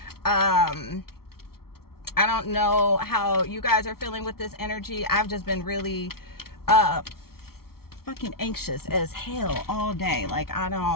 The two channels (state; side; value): late; right; 0.94 ms